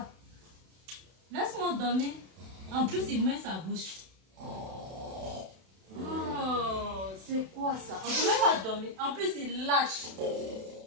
Laisse-moi dormir. En plus, il met sa bouche. Oh, c'est quoi ça? On ne peut même pas dormir. En plus, il lâche.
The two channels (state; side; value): late; left; 32 ms